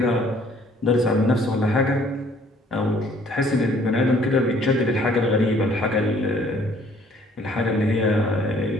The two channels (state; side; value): normal; both; correlation 0.59